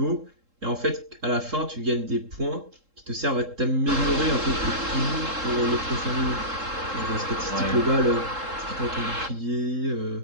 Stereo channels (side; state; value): left; late; 3.7 ms